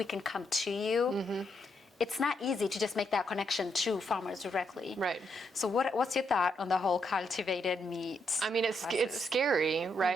can come to you. It's not easy to just make that connection to farmers directly. Right. So what's your thought on the whole cultivated meat? I mean, it's scary,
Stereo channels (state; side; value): normal; both; correlation 0.78